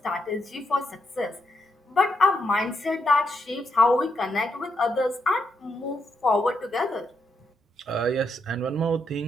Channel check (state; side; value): normal; both; correlation 0.80